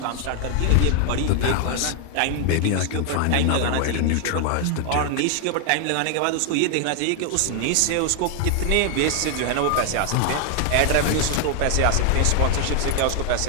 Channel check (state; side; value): different; both; correlation 0.00